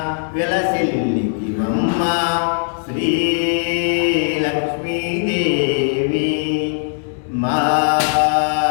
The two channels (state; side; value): silent; right; digital silence